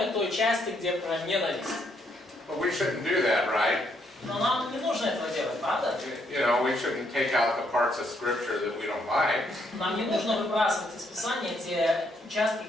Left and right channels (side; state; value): both; normal; correlation 0.73